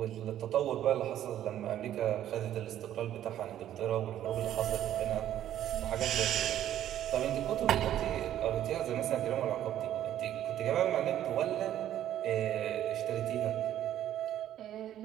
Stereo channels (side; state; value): left; quieter; 11.7 dB